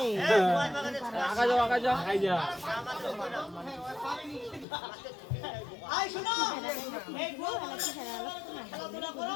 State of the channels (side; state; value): right; drops out; at 4.7 s